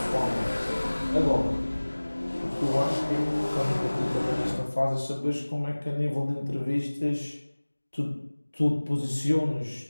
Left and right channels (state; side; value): inverted; both; correlation -1.00